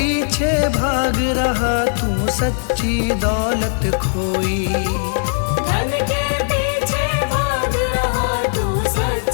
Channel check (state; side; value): silent; right; 62 dB below the other